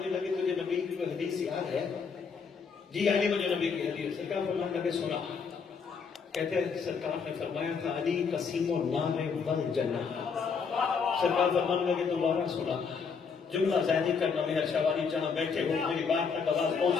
لگے تجھے نبی کی کوئی حدیث یاد ہے؟ جی علی مجھے نبی کی حدیث۔ سرکار فرمانے لگے سنا، کہتے ہیں سرکار نے فرمایا تھا علی قسیم النار والجنہ۔ سرکار فرمانے لگے دوبارہ سنا، جملہ ذہنی کرنا میں شواری جہاں بیٹھے ہو، میری بات تک آواز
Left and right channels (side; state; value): right; quieter; 5.7 dB